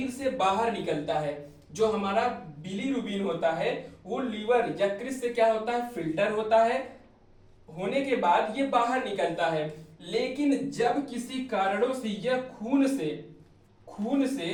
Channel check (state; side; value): identical; both; correlation 1.00